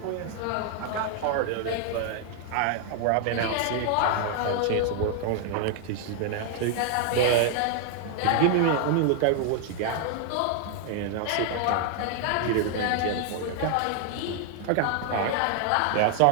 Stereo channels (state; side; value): different; both; correlation 0.00